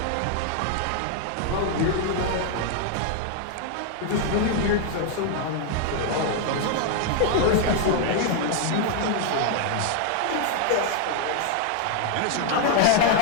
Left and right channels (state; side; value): different; both; correlation 0.00